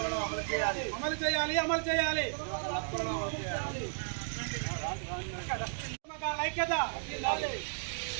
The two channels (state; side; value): silent; left; digital silence